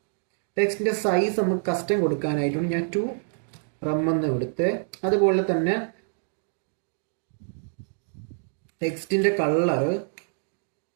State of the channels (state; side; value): silent; left; digital silence